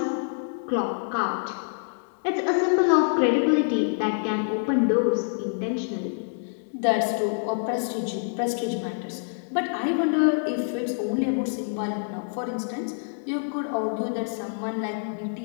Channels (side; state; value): right; silent; digital silence